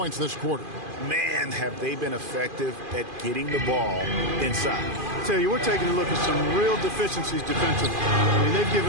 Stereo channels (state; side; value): late; left; 2.5 ms